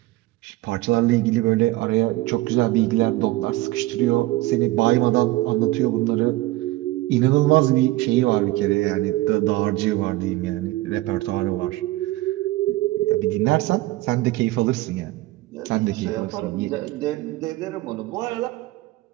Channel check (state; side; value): quieter; left; 18.2 dB